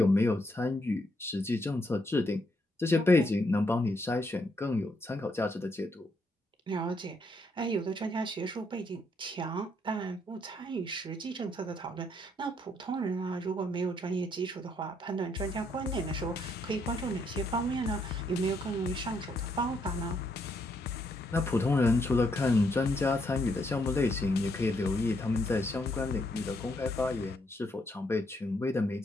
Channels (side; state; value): both; normal; correlation 0.74